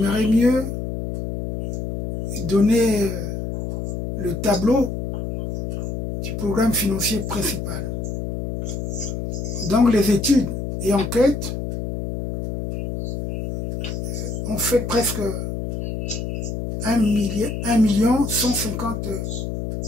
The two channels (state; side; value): noise; left; hum, 4 dB below the sound